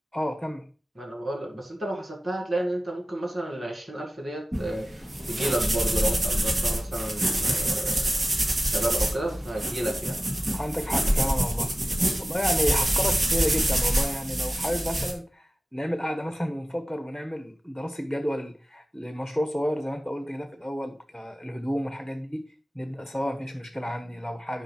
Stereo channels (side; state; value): both; normal; correlation 0.95